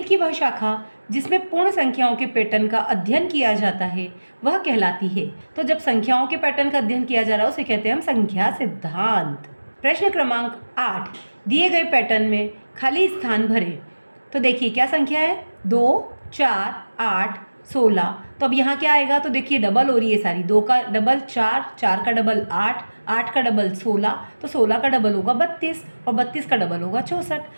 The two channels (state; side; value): inverted; both; correlation -1.00